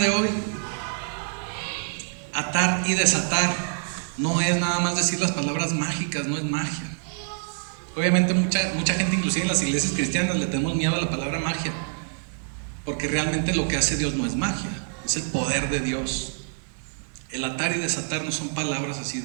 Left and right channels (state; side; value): silent; left; digital silence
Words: hoy, atar y desatar no es nada más decir las palabras mágicas, no es magia. Obviamente mucha gente, inclusive en las iglesias cristianas, le tenemos miedo a la palabra magia, porque realmente lo que hace Dios no es magia, es el poder de Dios. El atar y desatar no son palabras así